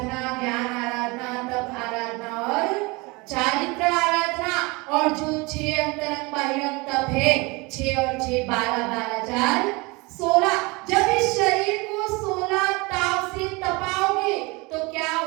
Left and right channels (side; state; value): left; quieter; 25.7 dB